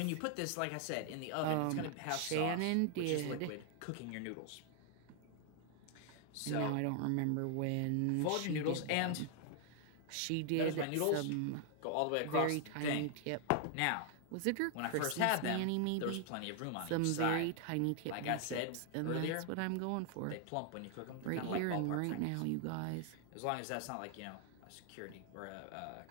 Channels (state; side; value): different; both; correlation 0.00